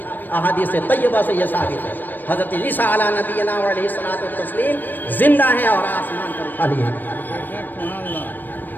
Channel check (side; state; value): right; late; 0.090 ms